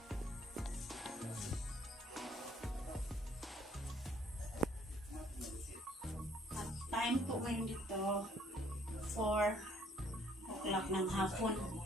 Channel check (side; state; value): both; normal; correlation 0.63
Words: At time po ngayon dito 4 o'clock ng hapon.